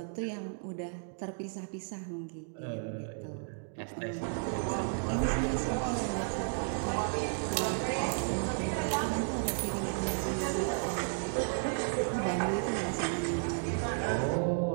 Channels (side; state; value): left; silent; digital silence